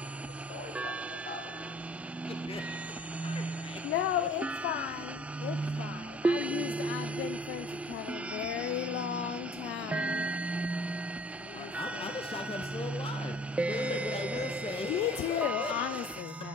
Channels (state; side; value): normal; both; correlation 0.53